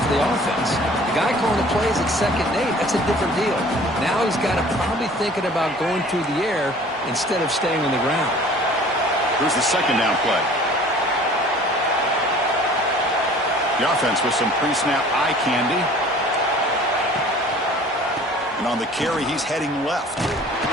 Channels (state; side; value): normal; both; correlation 0.49